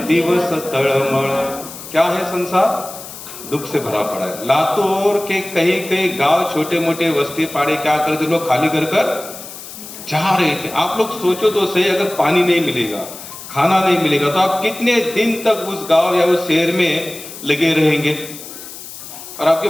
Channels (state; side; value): noise; left; hiss, 13 dB below the sound